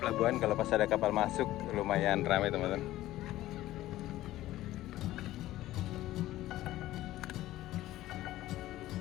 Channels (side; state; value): right; quieter; 15.3 dB